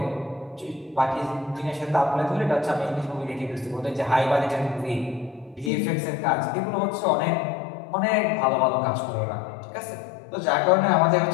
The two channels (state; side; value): drops out; right; at 5.7 s